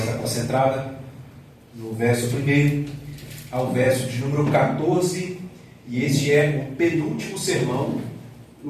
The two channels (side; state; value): both; identical; correlation 1.00